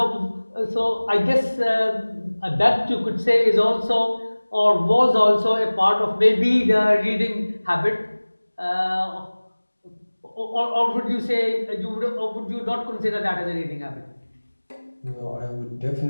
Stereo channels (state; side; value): inverted; both; correlation -1.00